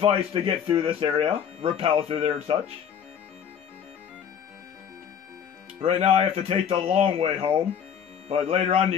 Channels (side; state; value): right; quieter; 8.1 dB